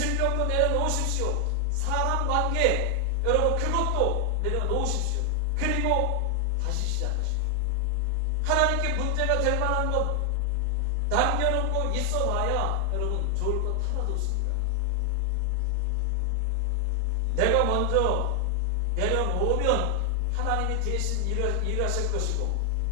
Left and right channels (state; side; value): different; both; correlation 0.00